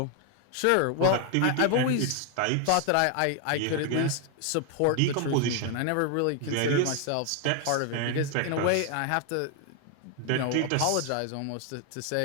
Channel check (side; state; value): both; different; correlation 0.00